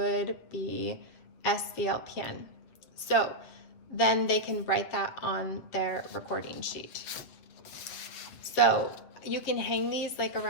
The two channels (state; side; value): late; right; 7.7 ms